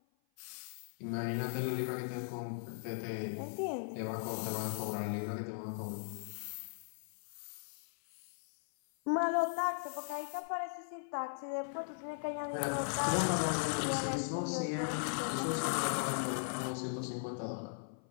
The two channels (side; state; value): right; silent; 52 dB below the other